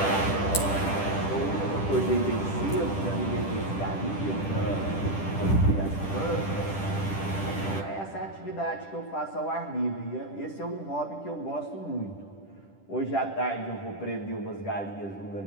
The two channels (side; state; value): right; late; 10 ms